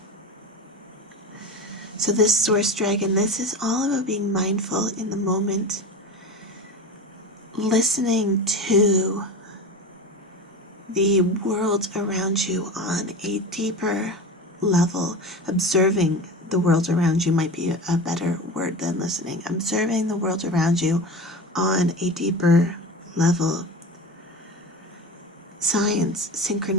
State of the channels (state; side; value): normal; both; correlation 0.29